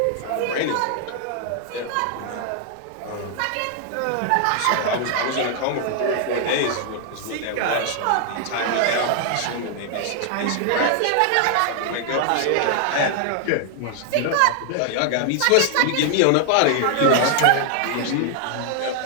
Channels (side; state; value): both; different; correlation 0.00